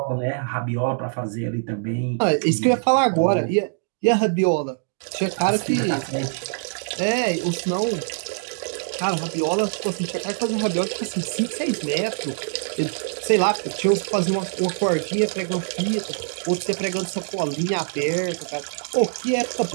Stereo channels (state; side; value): silent; left; digital silence